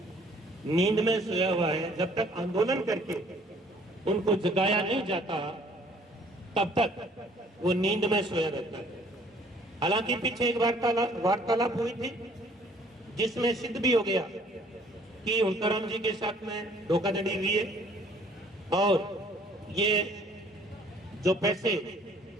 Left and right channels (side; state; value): both; normal; correlation 0.58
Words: नींद में सोया हुआ है। जब तक आंदोलन करके उनको जगाया नहीं जाता तब तक वो नींद में सोया रहता है। हालांकि पीछे एक वार्तालाप हुई थी जिसमें सिद्ध भी हो गया कि मुंताराम जी के साथ में धोखाधड़ी हुई है और ये जो पैसे